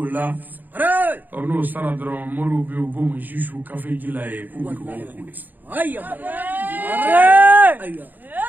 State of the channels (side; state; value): left; late; 0.087 ms